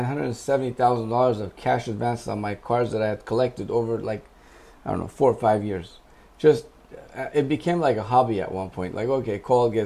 $170,000 of cash advances on my cards that I had collected over 4 or 5 years. Just, it became like a hobby at one point. Like, okay, call,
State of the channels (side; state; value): both; identical; correlation 1.00